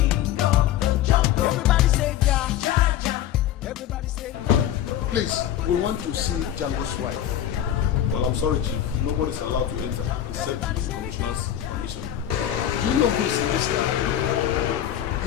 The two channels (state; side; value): quieter; right; 11.2 dB